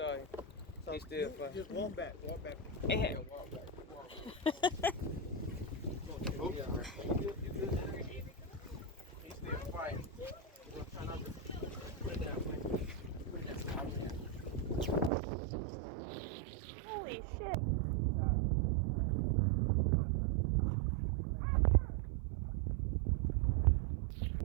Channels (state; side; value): drops out; left; at 15.1 s